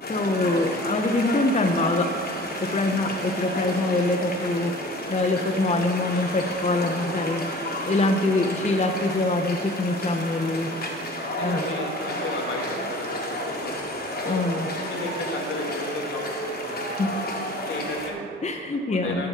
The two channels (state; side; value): normal; both; correlation 0.45